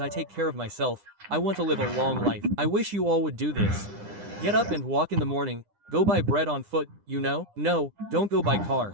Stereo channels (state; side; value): late; left; 9.9 ms